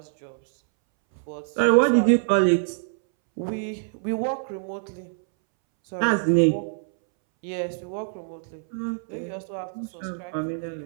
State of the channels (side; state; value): left; silent; 62 dB below the other